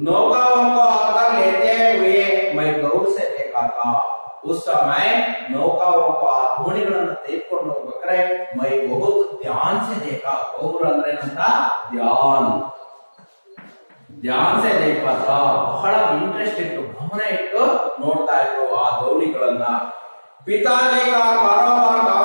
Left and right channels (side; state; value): both; inverted; correlation -1.00